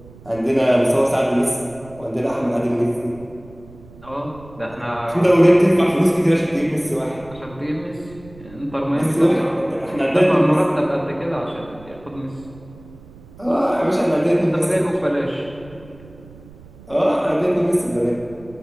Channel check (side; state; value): right; noise; rumble, 21 dB below the sound